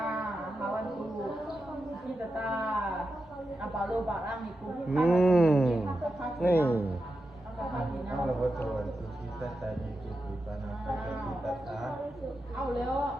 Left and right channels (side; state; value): left; noise; rumble, 28 dB below the sound